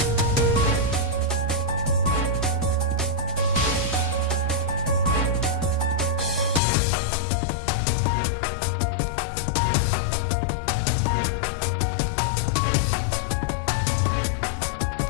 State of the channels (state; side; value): drops out; right; at 6.6 s